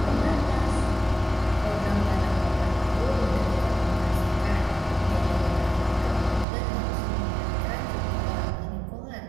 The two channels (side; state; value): left; drops out; at 6.5 s